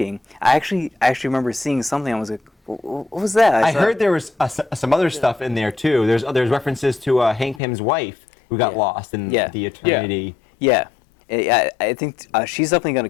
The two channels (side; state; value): right; drops out; at 7.6 s